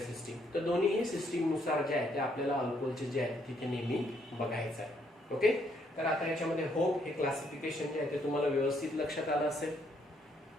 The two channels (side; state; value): both; normal; correlation 0.71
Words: तर दोन्ही सिस्टीम नुसार जे आहे ते आपल्याला अल्कोहोलचे जे आहे तिथे नेहमी बघायचं आहे. ओके, तर आता याच्यामध्ये होप हे क्लासिफिकेशन जे आहे ते तुम्हाला व्यवस्थित लक्षात आलं असेल.